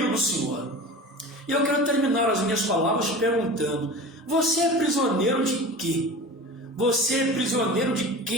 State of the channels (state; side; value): normal; both; correlation 0.34